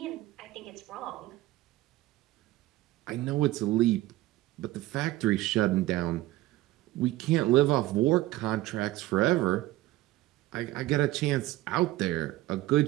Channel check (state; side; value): quieter; left; 16.7 dB